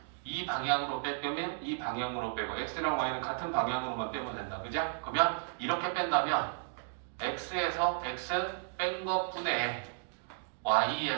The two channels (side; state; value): left; silent; digital silence